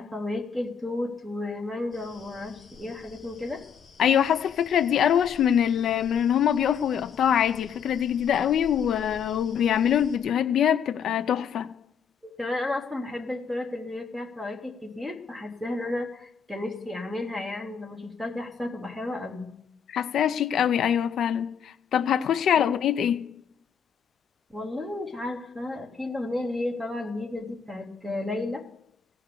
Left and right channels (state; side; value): quieter; right; 7.3 dB